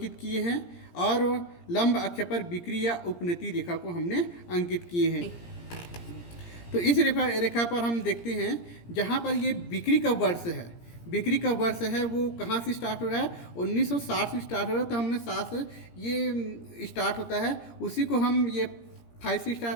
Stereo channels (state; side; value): late; right; 17 ms